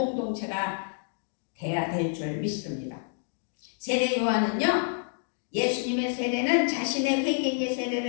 돼야 될 줄 믿습니다. 세례 요한은요, 예수님의 세례는 자신의 회개의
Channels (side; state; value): right; silent; 58 dB below the other